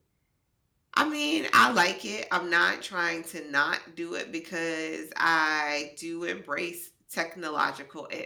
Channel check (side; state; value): both; identical; correlation 1.00